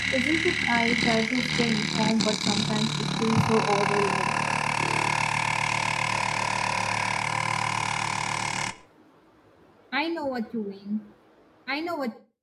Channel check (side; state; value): both; identical; correlation 1.00